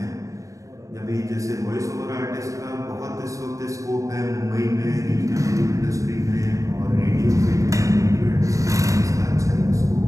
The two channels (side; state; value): left; late; 0.16 ms